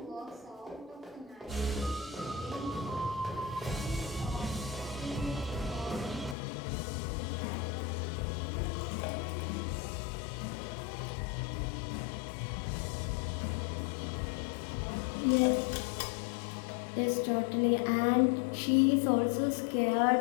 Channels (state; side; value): drops out; right; at 6.4 s